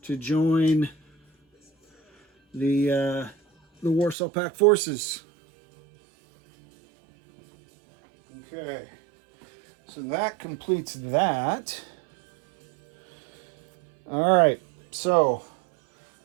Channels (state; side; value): drops out; left; at 4.2 s